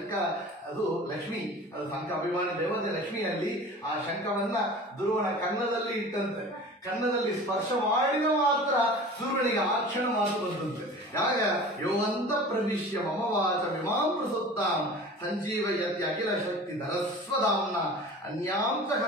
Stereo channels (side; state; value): both; normal; correlation 0.39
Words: ಅದು ಲಕ್ಷ್ಮಿ, ಅದು ಶಂಖ ಅಭಿಮಾನಿ ದೇವತೆ ಲಕ್ಷ್ಮಿಯಲ್ಲಿ ಆ ಶಂಖವನ್ನ ಧ್ರುವನ ಕನ್ನದಲ್ಲಿ ಇಟ್ಟಂತೆ. ಕನ್ನದಲ್ಲಿ ಸ್ಪರ್ಶ ಮಾಡಿದ ಮಾತ್ರ ಸೂರ್ಯನಿಗೆ ಆ ಕ್ಷಣ ಮಾತು ಬಂದಂತೆ. ಯಾಗ ಯೋವಂತ ಪ್ರವಿಶ್ಯ ಮಮ ವಾಚ ವಿಮಾಂ ಪ್ರಸುತ್ತಾಂ ಸಂಜೀವಯತಿ ಅಖಿಲ ಶಕ್ತಿ ಧರಸ್ವಧಾಮ್ನ ಅನ್ಯಾಂತ